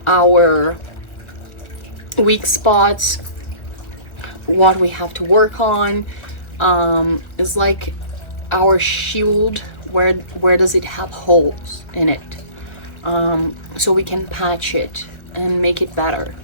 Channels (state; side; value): late; right; 1.2 ms